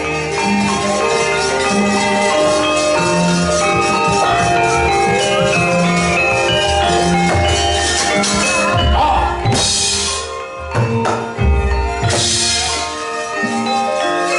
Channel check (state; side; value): identical; both; correlation 1.00